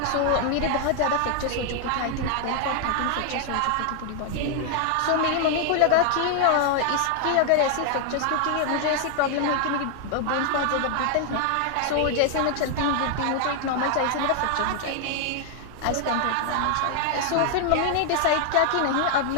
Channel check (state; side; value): different; both; correlation 0.00